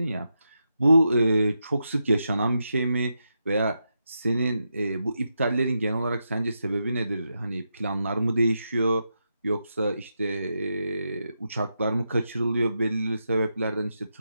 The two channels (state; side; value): inverted; both; correlation -0.86